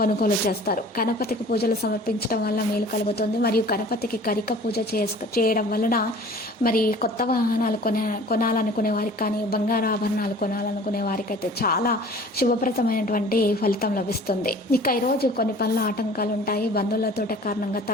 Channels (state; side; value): normal; both; correlation 0.46